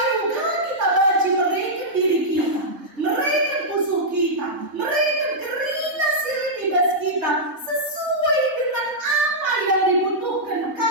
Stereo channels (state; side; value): late; left; 3.7 ms